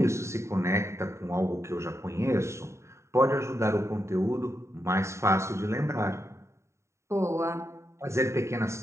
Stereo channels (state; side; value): late; left; 0.14 ms